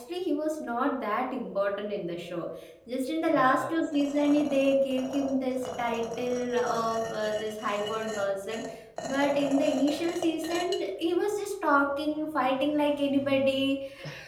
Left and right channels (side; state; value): both; identical; correlation 1.00